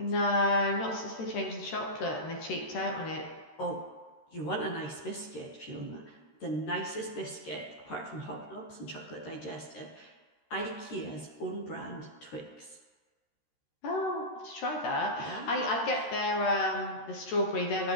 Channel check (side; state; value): right; late; 13 ms